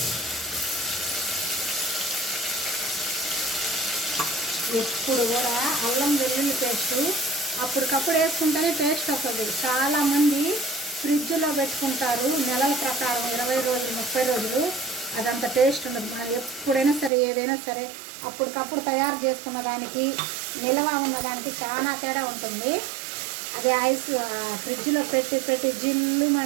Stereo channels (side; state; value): left; drops out; at 17.1 s